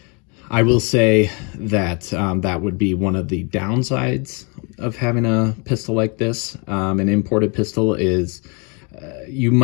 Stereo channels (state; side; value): quieter; right; 33.2 dB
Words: I will say that that would be one of the downsides of having a pistol like this. An imported pistol is you